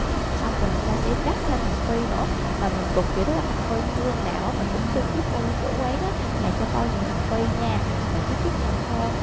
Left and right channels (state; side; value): identical; both; correlation 1.00